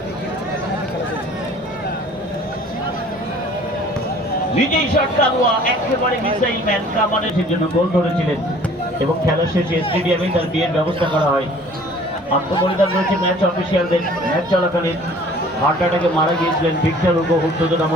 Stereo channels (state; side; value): normal; both; correlation 0.51